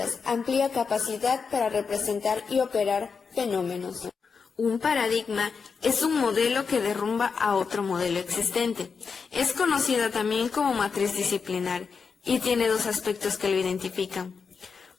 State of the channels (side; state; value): right; quieter; 5.5 dB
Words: amplía capacidad para representar y operar fenómenos. Un paradigma es un modelo que derrumba a otro modelo existente. Es conocida también como matriz disciplinar y tiene dos aspectos que lo identifican.